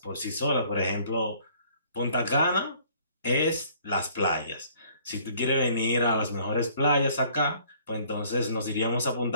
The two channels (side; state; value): both; inverted; correlation -0.58